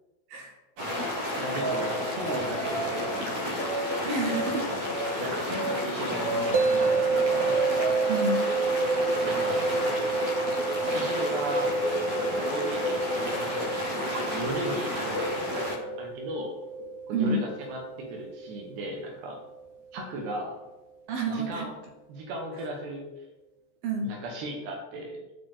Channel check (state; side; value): late; left; 14 ms